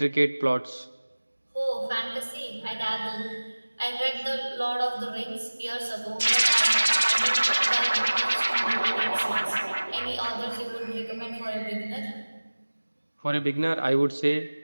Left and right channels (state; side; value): inverted; both; correlation -1.00